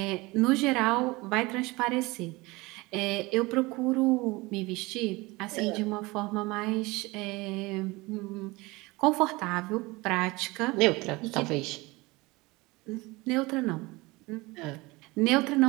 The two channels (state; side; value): quieter; left; 22.8 dB